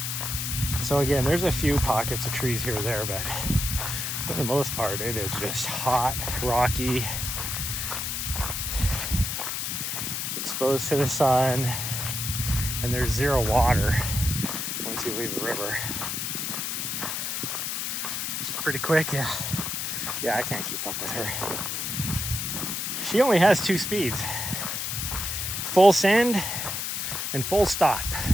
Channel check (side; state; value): left; noise; hiss, 2 dB below the sound